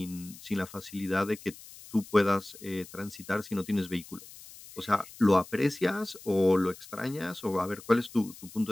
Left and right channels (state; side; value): noise; left; hiss, 18 dB below the sound